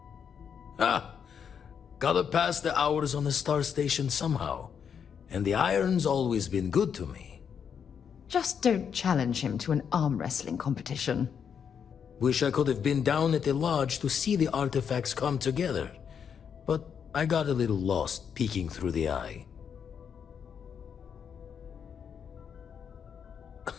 Ah, gotta pass the hours on the star station somehow. And the iron's always been good to me. Just don't challenge him to an arm wrestling competition. Wish I could have been down at the lodge to see the artifacts come together. But I got a little lost peeking through the eye.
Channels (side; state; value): right; quieter; 7.4 dB